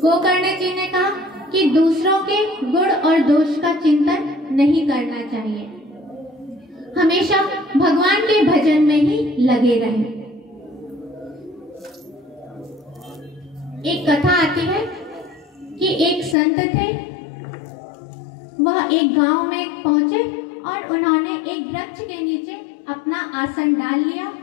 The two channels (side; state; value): right; drops out; at 16.4 s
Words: जी ने कहा कि दूसरों के गुण और दोष का चिंतन नहीं करना चाहिए, हमेशा भगवान के भजन में ही लगे रहें। एक कथा आती है कि एक संत थे, वह एक गांव में पहुंचे और उन्होंने एक वृक्ष के नीचे अपना आसन डाल लिया